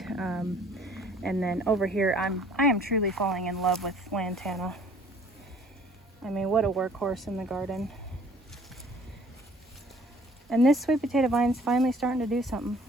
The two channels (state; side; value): normal; both; correlation 0.55